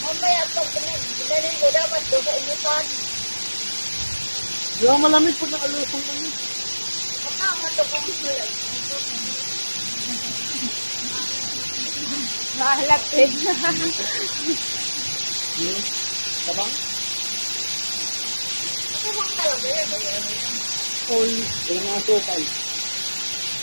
Mamaya pag pinanin ko dapat doon sa inupan. Di ba malamig pag nakalusong kami? Matama to kung sulat. Mahalapit. Yun. Tabang? Tabang talaga yan. All. Kaya nga sukal.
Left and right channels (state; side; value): inverted; both; correlation -1.00